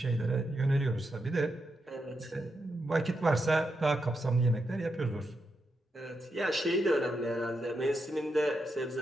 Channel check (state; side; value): normal; both; correlation 0.84